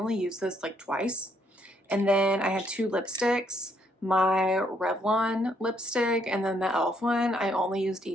used this like twice. And then I had 2 lipsticks, my Revlon lipstick, and then the e.l.f. one. I only used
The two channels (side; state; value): both; normal; correlation 0.71